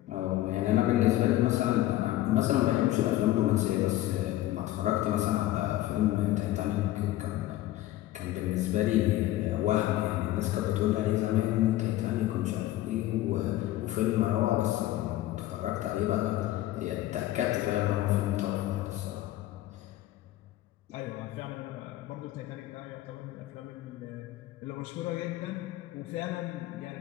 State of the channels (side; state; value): right; quieter; 15.1 dB